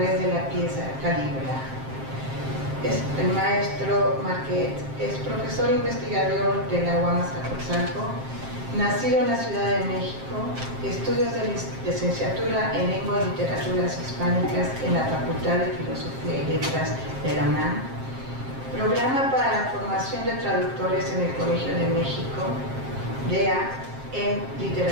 de la pieza Calígula. El maestro Marquet es profesor investigador de la UAM Azcapotzalco, nacido en la Ciudad de México, estudios de licenciatura en Lengua y Literaturas Hispánicas en la Facultad de Filosofía y Letras de la UNAM, programa para la formación de traductores en el Colegio de México, DEA en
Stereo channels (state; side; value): late; left; 7.5 ms